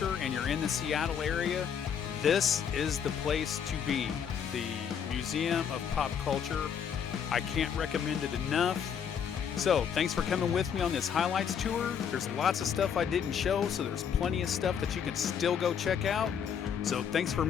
and you're in the Seattle area, this is the place to be. The Museum of Pop Culture. I can't recommend it enough. So, thanks for coming with me on this highlights tour. There's lots of stuff I didn't show, so there's plenty of stuff that you can still go check out. So, thanks for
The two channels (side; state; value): right; quieter; 7.7 dB